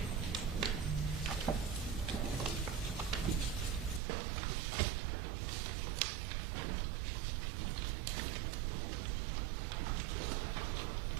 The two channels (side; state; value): left; drops out; at 4.0 s